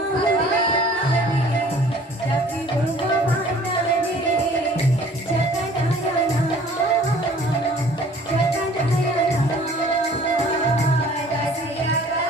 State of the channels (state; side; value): normal; both; correlation 0.52